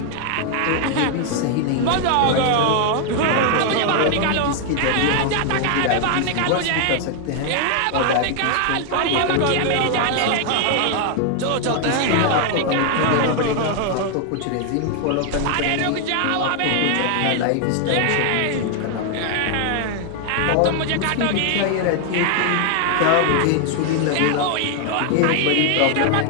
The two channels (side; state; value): both; different; correlation 0.00